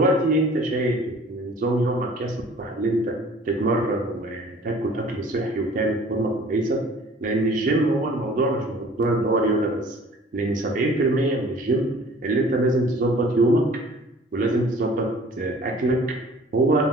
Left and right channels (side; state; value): both; normal; correlation 0.49